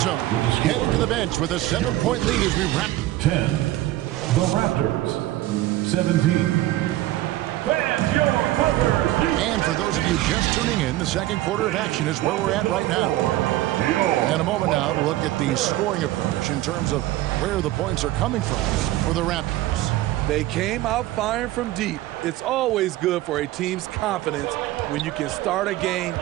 heading to the bench with a 7-point lead as we wrap. 10, the Raptors. 17. And for those of you just tuning in, the second quarter of action is where we're at right now. In a moment now, we'll look at the scoring approach in terms of where the points are coming from for the Raptors. They came out firing from deep. It's always good for a team's confidence when you can start a game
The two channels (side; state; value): left; quieter; 15.9 dB